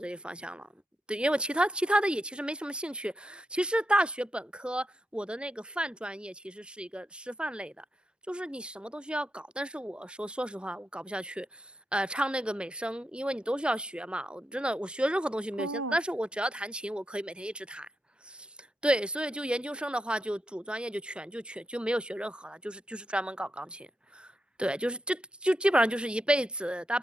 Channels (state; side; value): normal; both; correlation 0.85